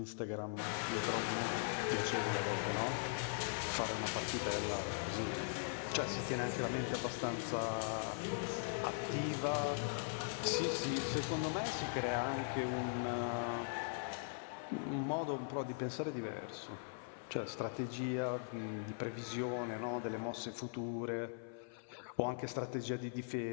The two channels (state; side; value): silent; right; 51 dB below the other